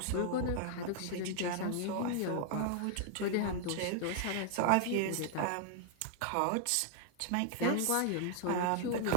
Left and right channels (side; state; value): both; different; correlation 0.00